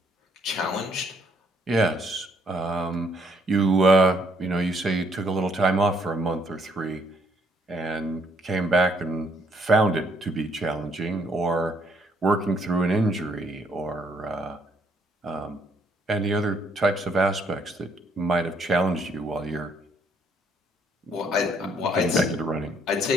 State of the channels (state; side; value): normal; both; correlation 0.68